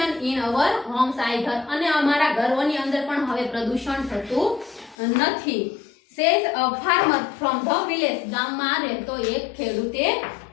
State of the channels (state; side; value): drops out; right; at 5.0 s